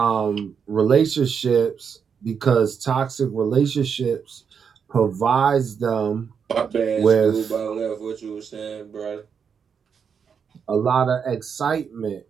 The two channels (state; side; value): quieter; left; 6.7 dB